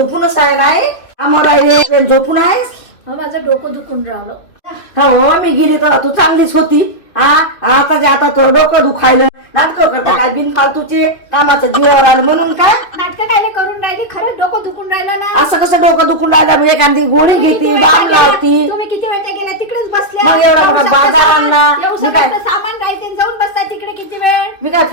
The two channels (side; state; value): right; late; 2.8 ms